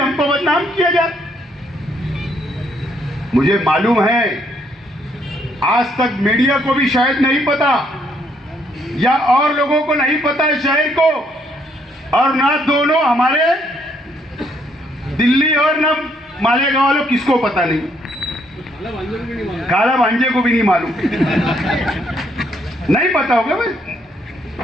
बदनाम किया जाए। मुझे मालूम है आज तक मीडिया को भी शायद नहीं पता या और लोगों को नहीं पता है शहर को, और ना दोनों हमारे दिल्ली और ना मालेगांव वालों किसको पता नहीं, काला भांजे को भी नहीं मालूम, नहीं पता होगा भाई।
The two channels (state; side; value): normal; both; correlation 0.71